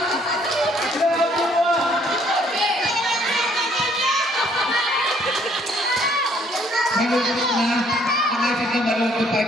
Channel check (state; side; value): normal; both; correlation 0.64